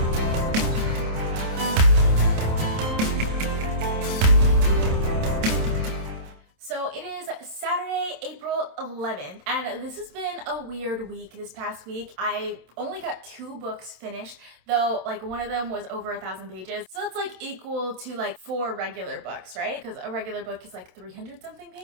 So it is Saturday, April 11th, and this has been a weird week this past week. I only got 2 books finished, though like one of them was over 1,000 pages. So it's like equal to like 4 regular books, right? Because a regular book is like 300 something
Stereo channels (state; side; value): late; left; 27 ms